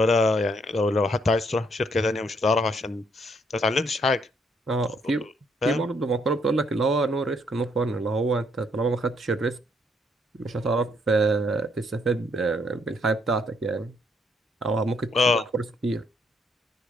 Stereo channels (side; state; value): both; normal; correlation 0.71